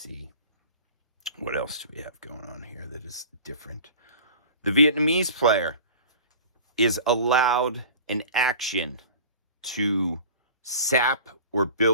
What else do we have going on here that is different? The Vietnamese player is allowed an action to sap or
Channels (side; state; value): both; inverted; correlation -0.40